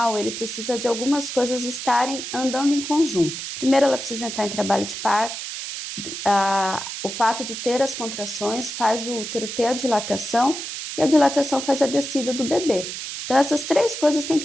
ele precisa de algumas coisas estarem andando em conjunto. Primeiro, ela precisa entrar em trabalho de parto. O fato de ter as contrações faz o útero ter a dilatação, e a dilatação faz a descida do bebê. Então, essas 3 coisas têm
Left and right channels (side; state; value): right; noise; hiss, 7 dB below the sound